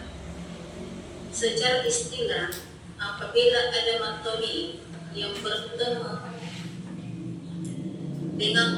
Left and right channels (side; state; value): both; identical; correlation 1.00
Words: Secara istilah, apabila ada mat tabi'i yang bertemu